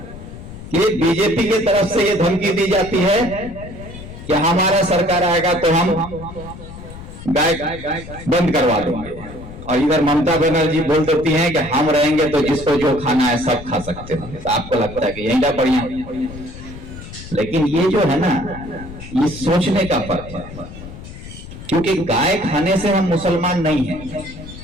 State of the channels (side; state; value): left; noise; rumble, 13 dB below the sound